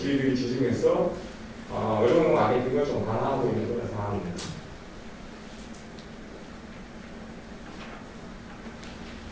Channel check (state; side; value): identical; both; correlation 1.00